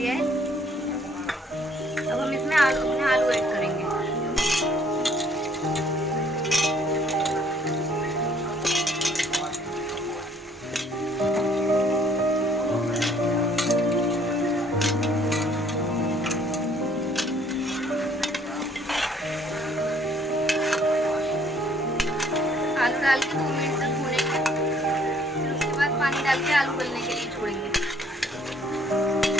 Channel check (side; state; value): both; normal; correlation 0.61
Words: है। अब हम इसमें अपने आलू ऐड करेंगे। आलू डाल के 2 मिनट तक भूनेंगे। फिर उसके बाद पानी डाल के आलू गलने के लिए छोड़ेंगे।